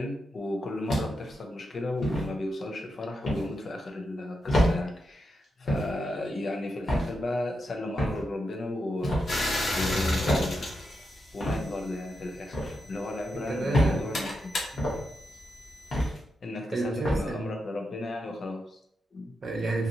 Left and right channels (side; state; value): both; normal; correlation 0.86